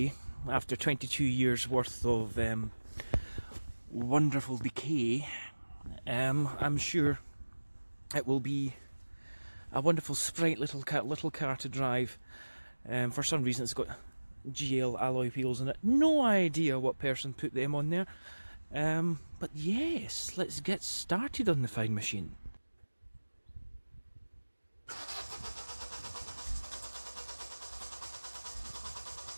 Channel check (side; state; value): both; inverted; correlation -1.00